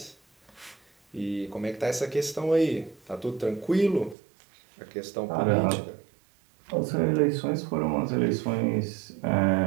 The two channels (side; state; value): left; drops out; at 4.2 s